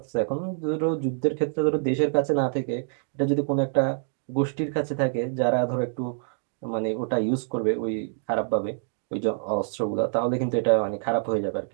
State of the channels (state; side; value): silent; left; digital silence